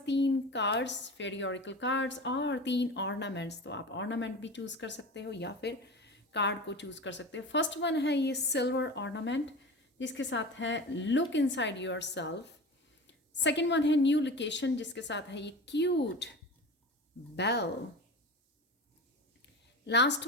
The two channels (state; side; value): normal; both; correlation 0.31